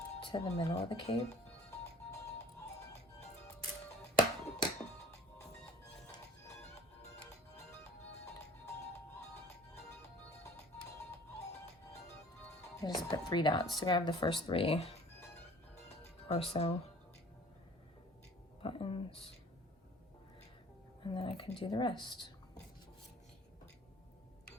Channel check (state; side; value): normal; both; correlation 0.50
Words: to the middle of the cape. I just put 3 dots to grab the first 3 or so buttons, and then I can do the rest.